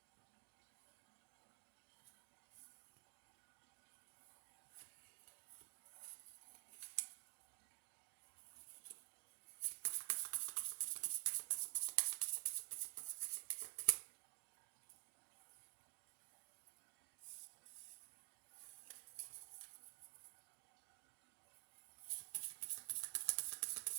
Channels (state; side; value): silent; left; digital silence